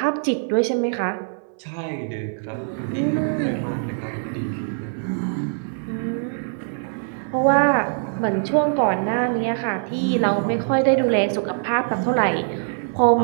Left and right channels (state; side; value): silent; left; 57 dB below the other